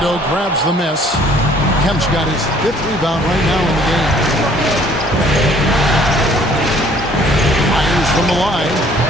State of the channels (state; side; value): normal; both; correlation 0.57